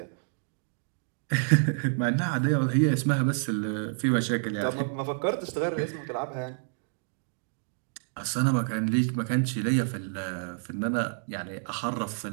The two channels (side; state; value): left; silent; digital silence